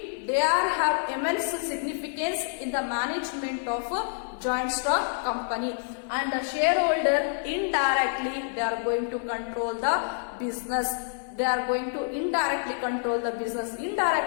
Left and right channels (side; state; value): right; silent; digital silence